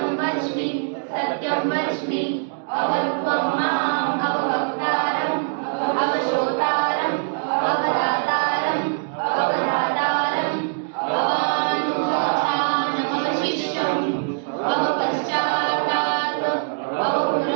वच्मि सत्यं वच्मि अवत्वं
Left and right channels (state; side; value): silent; left; digital silence